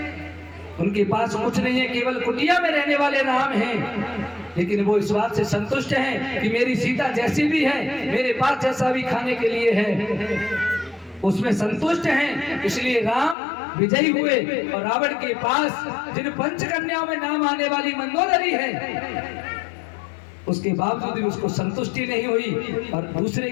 उनके पास कुछ नहीं है, केवल कुटिया में रहने वाले राम हैं, लेकिन वो इस बात से संतुष्ट हैं कि मेरी सीता जैसी भी है, मेरे पास जैसा भी खाने के लिए है, उसमें संतुष्ट हैं। इसलिए राम विजयी हुए और रावण के पास जिन पंचकन्याओं में नाम आने वाली मंदोदरी है, उसके बावजूद भी उसको संतुष्टि नहीं हुई और दूसरे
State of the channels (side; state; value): right; drops out; at 13.4 s